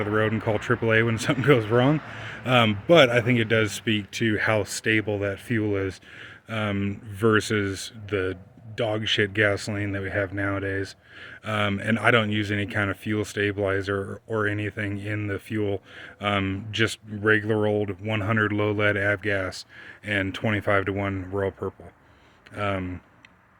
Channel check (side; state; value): both; identical; correlation 1.00